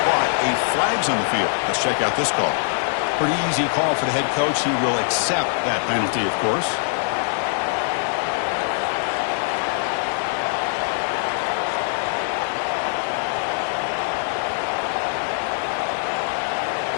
but a flag's on the field. Let's check out this call. Pretty easy call for the head coach. He will accept that penalty, of course.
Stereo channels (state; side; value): silent; right; digital silence